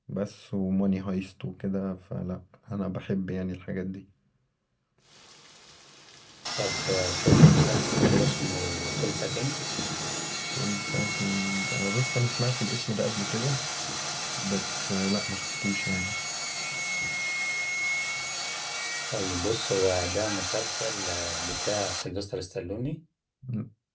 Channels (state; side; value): identical; both; correlation 1.00